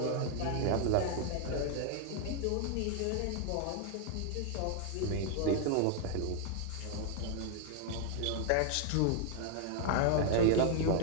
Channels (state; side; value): different; both; correlation 0.00